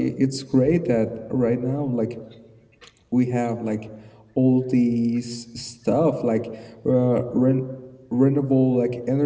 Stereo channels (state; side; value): identical; both; correlation 1.00